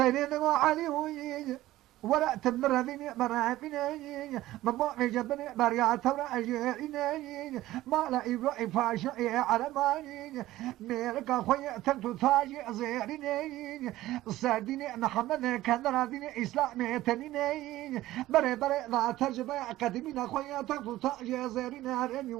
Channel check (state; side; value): quieter; left; 15.8 dB